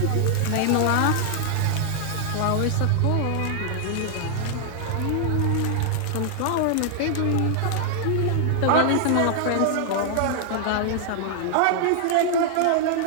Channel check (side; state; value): both; different; correlation 0.00